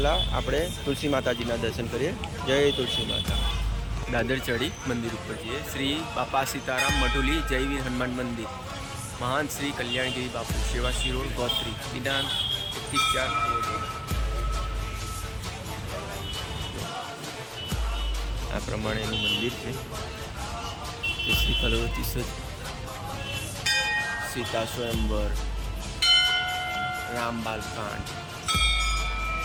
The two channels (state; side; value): identical; both; correlation 1.00